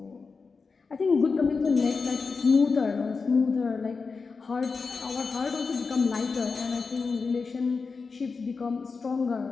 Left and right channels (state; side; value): quieter; right; 4.7 dB